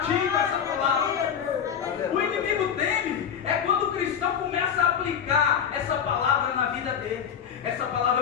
essa palavra. O inimigo teme é quando o cristão começa a aplicar essa palavra na vida dele. Essa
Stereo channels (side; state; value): right; quieter; 8.0 dB